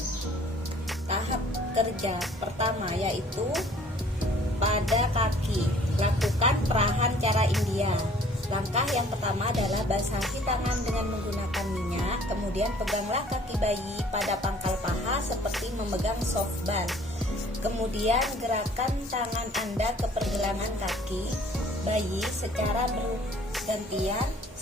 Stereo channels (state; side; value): normal; both; correlation 0.55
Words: Tahap kerja pertama yaitu pada kaki, lakukan perahan cara India. Langkah yang pertama adalah basahi tangan dengan menggunakan minyak, kemudian peganglah kaki bayi pada pangkal paha seperti memegang softball. Kemudian gerakan tangan Anda ke pergelangan kaki bayi secara bergantian